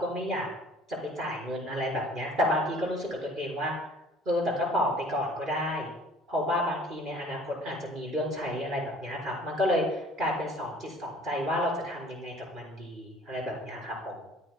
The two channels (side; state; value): both; normal; correlation 0.51